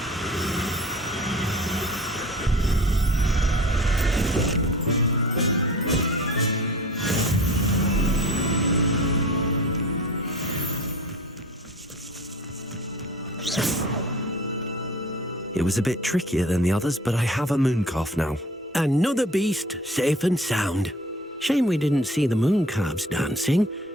It was a bit trickier than the others, but I have a moon calf now. Another beast, safe and sound. Shame we didn't see the moon calves dancing.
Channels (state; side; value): normal; both; correlation 0.43